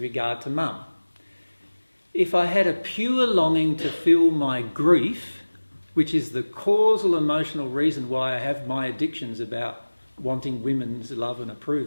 to mum, if I had a pure longing to feel my grief, which is the causal emotional reason why I have my addictions about wanting women's love and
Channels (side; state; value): both; inverted; correlation -1.00